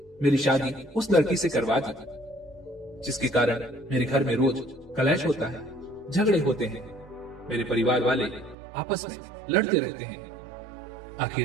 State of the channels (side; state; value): left; drops out; at 8.6 s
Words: मेरी शादी उस लड़की से करवा दी, जिसके कारण मेरे घर में रोज कलेश होता है, झगड़े होते हैं। मेरे परिवार वाले आपस में लड़ते रहते हैं।